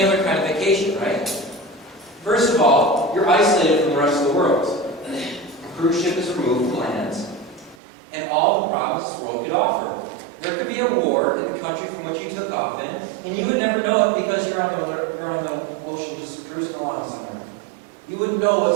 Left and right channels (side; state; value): left; drops out; at 7.8 s